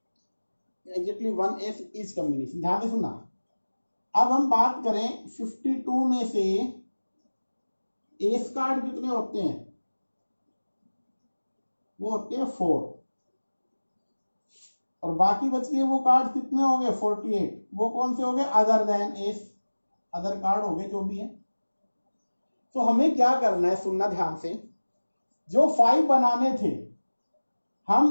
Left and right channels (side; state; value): both; inverted; correlation -1.00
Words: एग्जैक्टली 1 एस इज कॉम्बिनेशन। ध्यान से सुनना, अब हम बात करें 52 में से एस कार्ड कितने होते हैं, वो होते हैं 4 और बाकी बच गए वो कार्ड कितने हो गए 48, वो कौन से हो गए other than S, other card हो गए जो भी है। तो हमें क्या करना है, सुनना ध्यान से, जो 5 बनाने थे